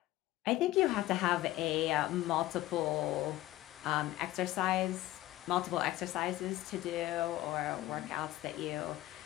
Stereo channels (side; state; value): right; quieter; 16.2 dB